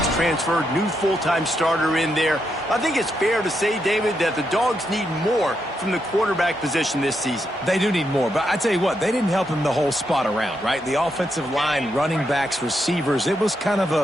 transferred, new full-time starter in there. I think it's fair to say, David, that the Dogs need more from the quarterback position this season. They do need more, but I tell you what, they didn't help him the whole spot around, right? The offensive line, running backs, receivers, it was kind of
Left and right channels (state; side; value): normal; both; correlation 0.81